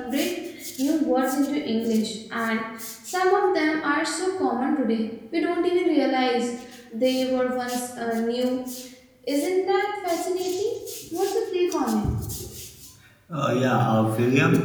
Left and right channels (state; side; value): identical; both; correlation 1.00